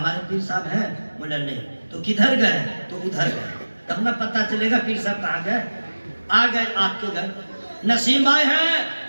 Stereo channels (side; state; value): both; inverted; correlation -1.00